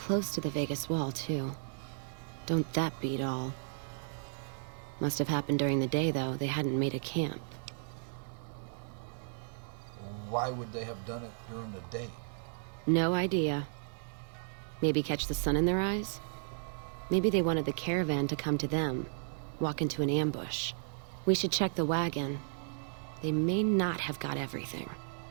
to the Vegas wall, too. Don't that beat all? Must have happened during the day, though. They hadn't made a camp. Why would they have done it during the day? No idea. Maybe catch the sun in their eyes? Maybe they wanted the caravan to come to them, walk into an ambush. We should check the wagon. They may not have got everything.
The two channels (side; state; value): left; silent; digital silence